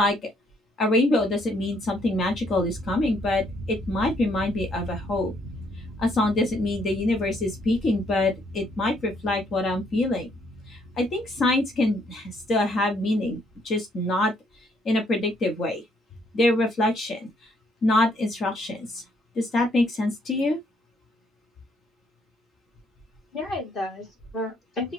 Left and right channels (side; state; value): both; normal; correlation 0.69